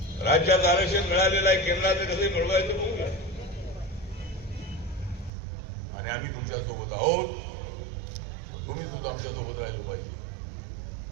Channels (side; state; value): left; drops out; at 5.3 s